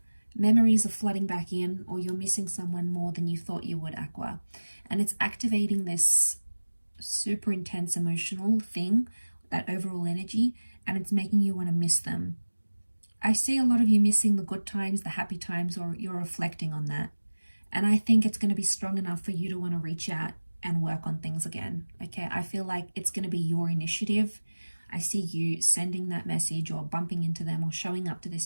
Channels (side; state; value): both; inverted; correlation -1.00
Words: Memories are flooding back in, or you're missing someone more than you thought you would, Aqua. And it's activating this super intense emotional thing, that overall energy, and it's making you want to miss them. I see a lot of you missing the good times, the happy times, or you're reflecting on that. And I think it's going to be strong enough for you to want to reach out and work on things again, okay? I feel like it's going to be your initiative. I see you sending that message or bumping into them or showing up to